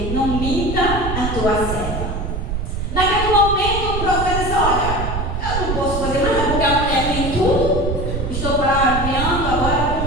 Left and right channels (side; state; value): right; noise; rumble, 3 dB below the sound